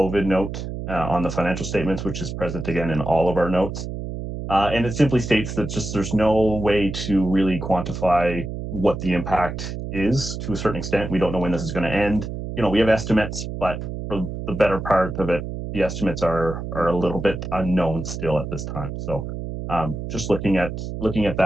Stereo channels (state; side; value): noise; right; hum, 6 dB below the sound